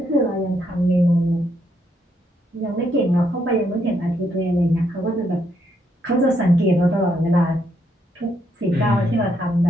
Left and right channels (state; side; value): normal; both; correlation 0.75